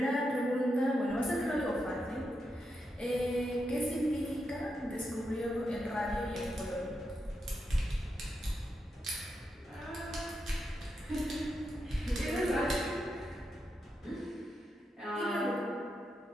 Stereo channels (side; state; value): both; normal; correlation 0.85